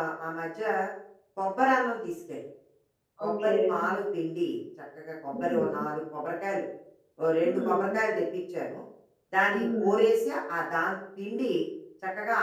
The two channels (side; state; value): both; identical; correlation 1.00